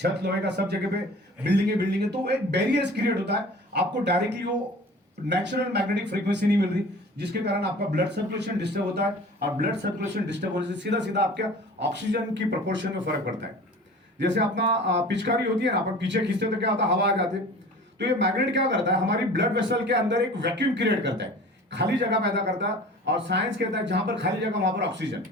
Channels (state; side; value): normal; both; correlation 0.42